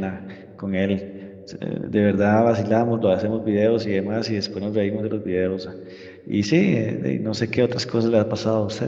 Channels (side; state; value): both; identical; correlation 1.00